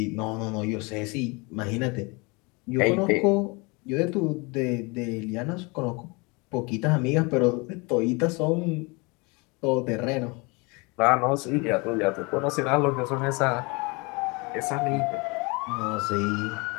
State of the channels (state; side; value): quieter; right; 28.0 dB